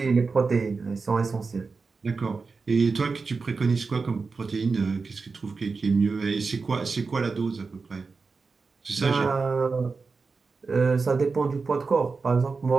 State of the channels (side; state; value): left; quieter; 4.5 dB